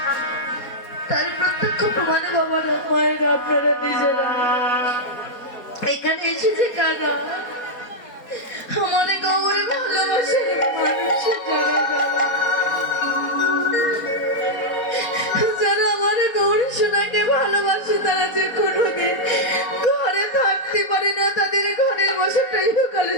তার প্রত্যক্ষ প্রমাণ বাবার মায়ের আপনারা নিজেরা এখানে এসেছে কাকা আমাদের গৌরে ভালোবাসে মানুষের যারা আমাদের গৌরী সোনাকে ভালোবাসে তারা যে কোনোদিন ঘরে থাকতে পারে না, তাদের ঘরের বসতটা ইহকালে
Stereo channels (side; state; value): right; late; 4.1 ms